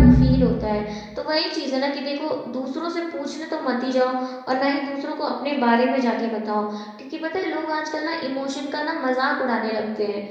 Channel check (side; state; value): both; identical; correlation 1.00